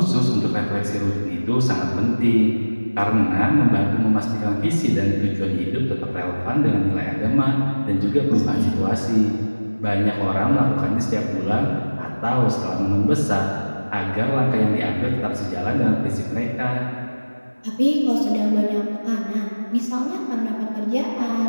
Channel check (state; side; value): inverted; both; correlation -1.00